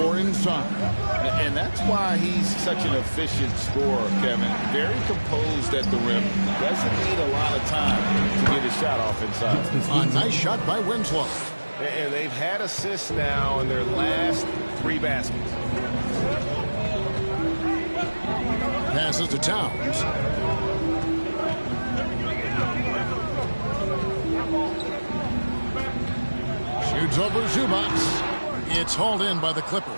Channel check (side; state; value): both; inverted; correlation -1.00